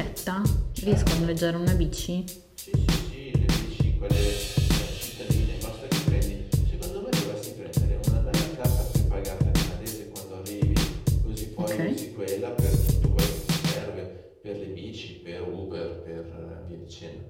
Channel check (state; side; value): identical; both; correlation 1.00